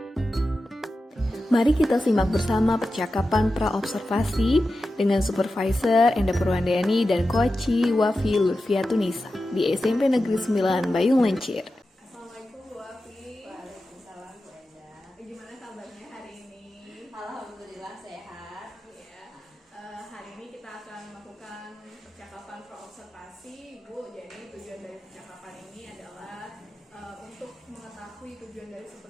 Mari kita simak bersama percakapan pra-observasi dengan Supervisor Enda Purwandani dan Koci Wafi Lutfiatunisa di SMP Negeri 9 Bayung Lencir. Assalamualaikum Bu Wafi. Waalaikumsalam Bu Enda. Gimana kabarnya hari ini? Alhamdulillah sehat. Ya, hari ini kita akan melakukan percakapan pra-observasi Bu. Jadi tujuan dari percakapan ini adalah untuk mengetahui tujuan dari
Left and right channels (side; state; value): both; normal; correlation 0.92